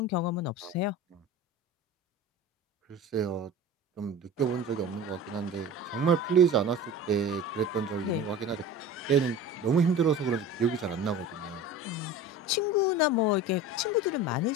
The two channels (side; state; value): both; normal; correlation 0.35